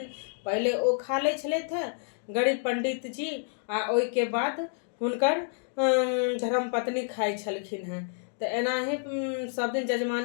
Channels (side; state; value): right; silent; 59 dB below the other